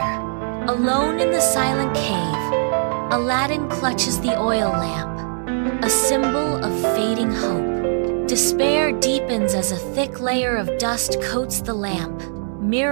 Alone in the silent cave, Aladdin clutches the oil lamp, a symbol of fading hope. Despair deepens as a thick layer of dust coats the lamp,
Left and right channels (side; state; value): left; silent; digital silence